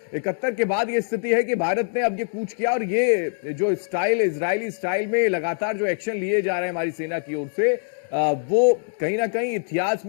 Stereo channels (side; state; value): right; silent; 63 dB below the other